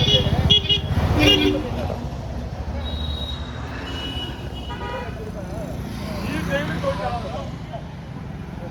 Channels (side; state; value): both; identical; correlation 1.00